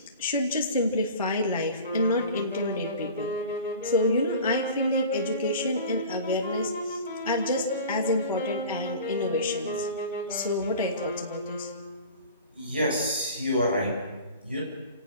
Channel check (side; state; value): both; inverted; correlation -0.40